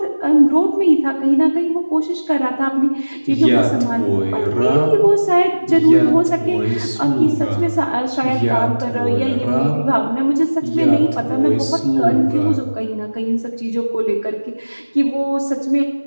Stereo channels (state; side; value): inverted; both; correlation -1.00